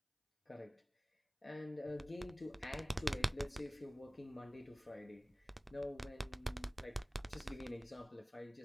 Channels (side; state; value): both; normal; correlation 0.98